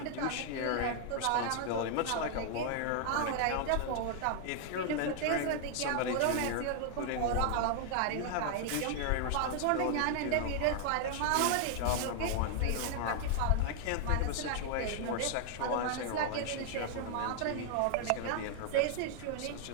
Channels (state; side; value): different; both; correlation 0.00